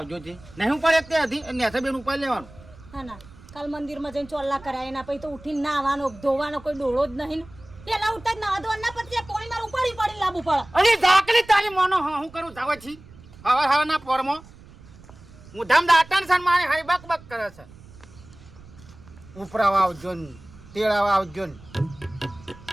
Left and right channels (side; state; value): right; noise; rumble, 21 dB below the sound